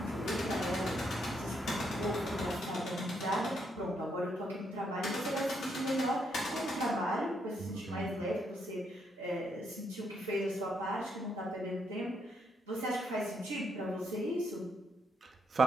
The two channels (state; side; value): normal; both; correlation 0.76